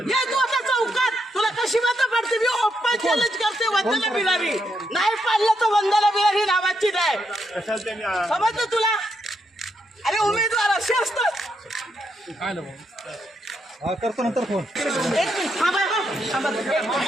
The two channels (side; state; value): both; normal; correlation 0.80